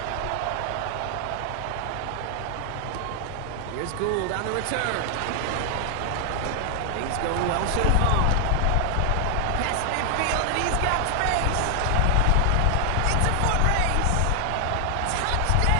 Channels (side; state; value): both; different; correlation 0.00